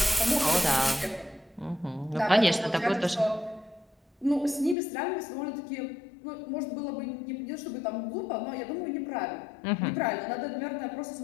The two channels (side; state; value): right; drops out; at 4.8 s